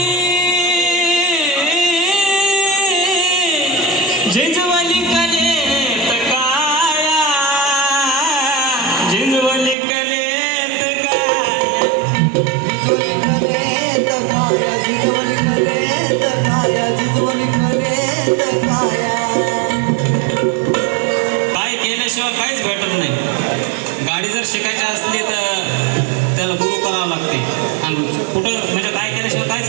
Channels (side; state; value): left; drops out; at 9.8 s